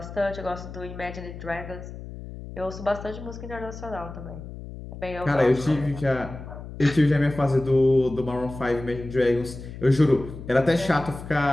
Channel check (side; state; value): left; noise; hum, 12 dB below the sound